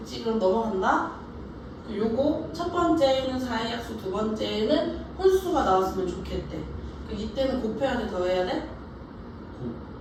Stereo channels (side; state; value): both; identical; correlation 1.00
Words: 그럼 넘어간다. 요거 첫 번째는 4의 약수, 두 번째는 혼수가 나왔으면 좋겠대. 이때는 곱해야 돼, 더해야 돼?